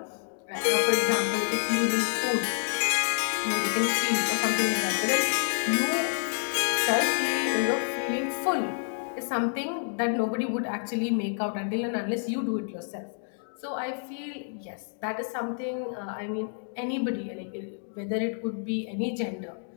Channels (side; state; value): right; silent; digital silence